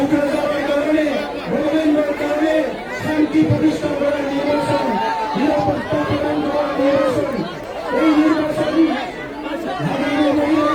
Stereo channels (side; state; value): both; identical; correlation 1.00